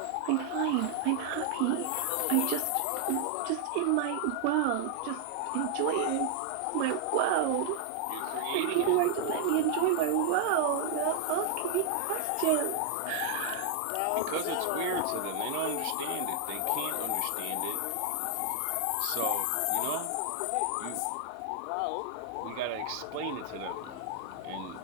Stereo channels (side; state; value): both; different; correlation 0.00